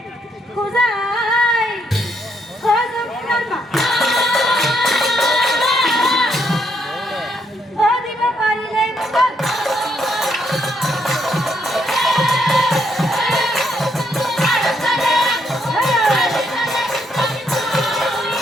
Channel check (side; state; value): both; normal; correlation 0.74